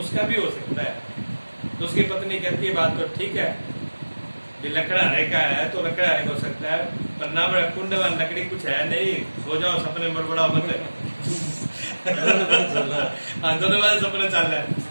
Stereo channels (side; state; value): both; inverted; correlation -1.00